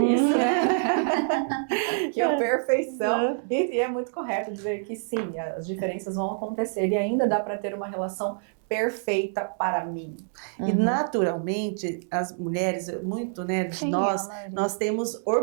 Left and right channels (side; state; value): left; silent; digital silence